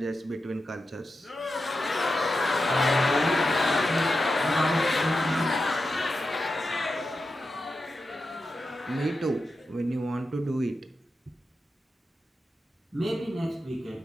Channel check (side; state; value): both; normal; correlation 0.89